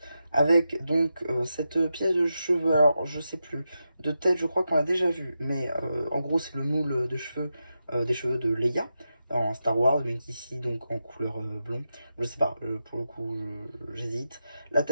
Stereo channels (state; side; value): inverted; both; correlation -0.88